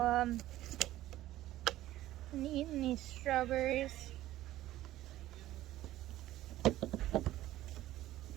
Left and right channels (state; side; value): quieter; left; 14.7 dB